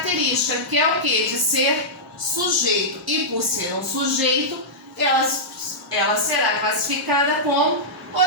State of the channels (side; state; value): both; normal; correlation -0.10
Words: que é o quê? De ser sujeito. E por ser um sujeito, ela será classificada como